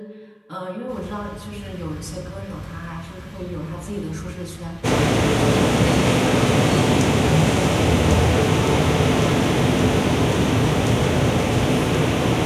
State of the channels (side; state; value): both; identical; correlation 1.00